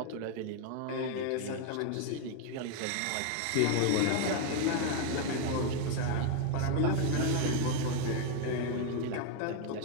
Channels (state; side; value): different; both; correlation 0.01